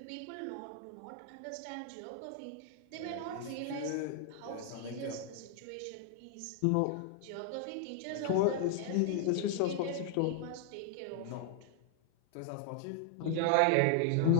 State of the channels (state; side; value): different; both; correlation 0.00